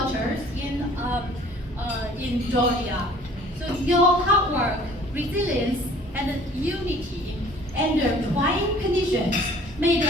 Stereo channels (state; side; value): normal; both; correlation 0.52